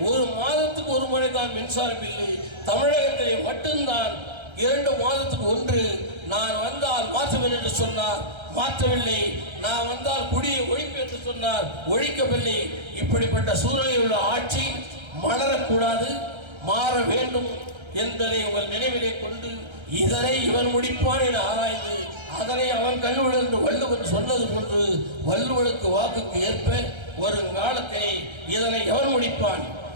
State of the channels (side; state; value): left; late; 1.3 ms